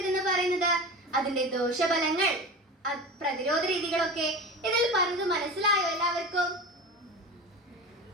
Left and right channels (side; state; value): both; normal; correlation 0.30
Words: പറയുന്നത്? അതിന്റെ ദോഷഫലങ്ങൾ, പ്രതിരോധ രീതികളൊക്കെ ഇതിൽ പറഞ്ഞത് മനസ്സിലായോ എല്ലാവർക്കും?